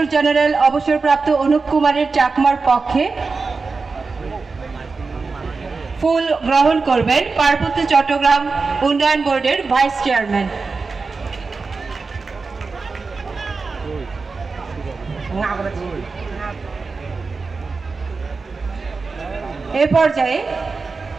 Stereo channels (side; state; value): left; quieter; 4.3 dB